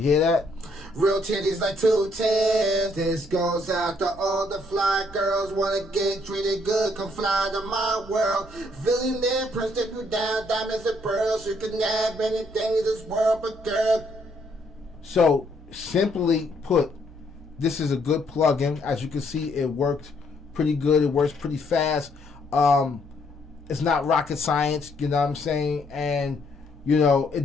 hear that? Real titties like 210. This goes out to all the fly girls wanna get treated good, come fly to my world. Billionaire prince, take you down, diamonds and pearls. You can have anything in this world, but girl. So simply put, this is a good plugin. As you can see, it worked pretty good. It works pretty fast. It's not rocket science, you know what I'm saying? And you know,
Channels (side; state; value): both; normal; correlation 0.69